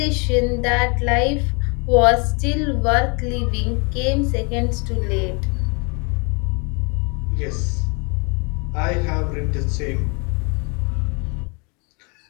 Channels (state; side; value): quieter; right; 32.8 dB